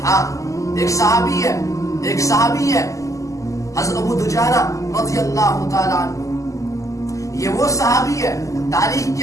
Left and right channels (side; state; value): right; late; 0.16 ms